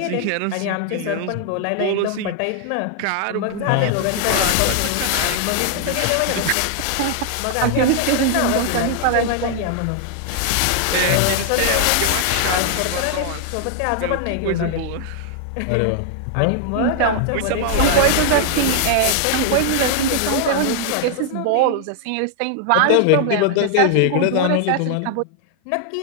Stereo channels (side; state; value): both; different; correlation 0.00